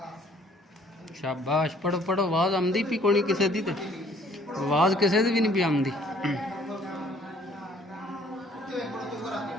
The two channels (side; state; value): both; normal; correlation 0.59